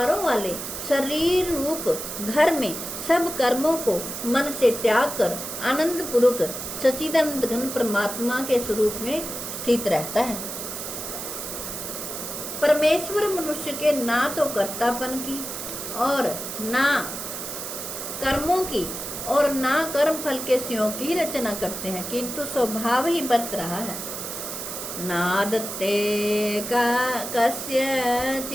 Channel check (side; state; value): right; noise; hiss, 7 dB below the sound